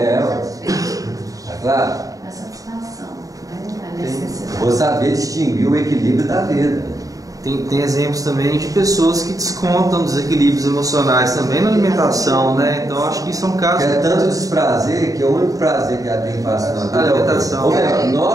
Tá claro? A satisfação, né? A necessidade. Vou saber distinguir o equilíbrio da vida. Tem exemplos também de pessoas que descontam desequilíbrios emocionais também na alimentação, né? Então acho que isso é um caso. É tanto desprazer que o único prazer que ela tem fácil na vida é a alimentação. Ou melhor,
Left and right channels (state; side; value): late; left; 0.17 ms